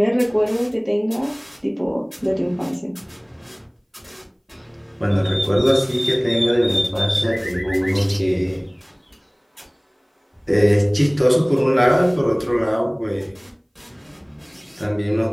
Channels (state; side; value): identical; both; correlation 1.00